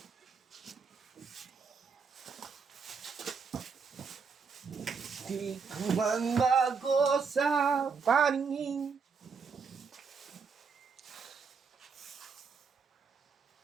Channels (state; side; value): quieter; left; 5.4 dB